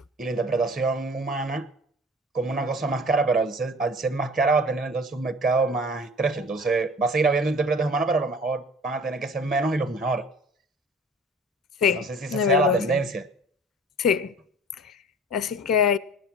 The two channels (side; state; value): both; normal; correlation 0.45